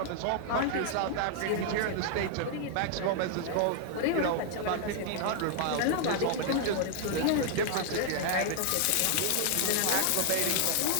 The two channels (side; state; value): both; different; correlation 0.00